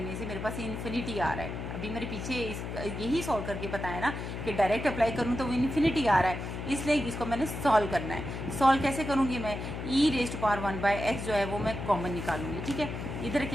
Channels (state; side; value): noise; left; hum, 6 dB below the sound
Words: से मेरे पास इन्फिनिटी आ रहा है। अभी मेरे पीछे यही सॉल्व करके बताया ना कि डायरेक्ट अप्लाई करूँ तो वो इन्फिनिटी आ रहा है, इसलिए इसको मैंने सॉल्व करना है। सॉल्व कैसे करूँगी मैं, e⁻1/x जो है वो मैं कॉमन निकालूंगी। ठीक है, इधर